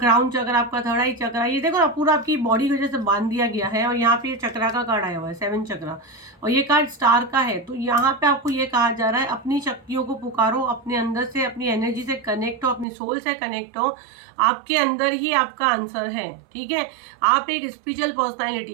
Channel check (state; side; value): drops out; left; at 12.9 s